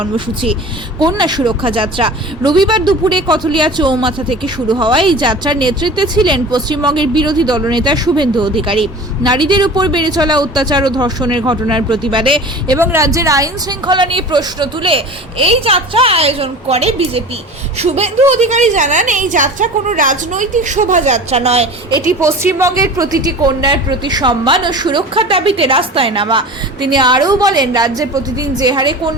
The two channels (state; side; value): normal; both; correlation 0.37